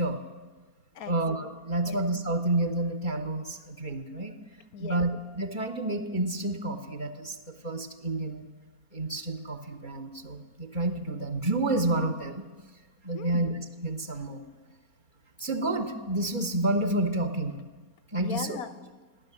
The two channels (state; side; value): late; right; 4.3 ms